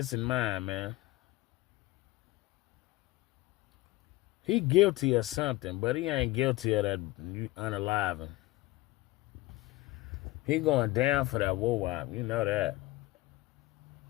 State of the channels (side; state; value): right; quieter; 19.2 dB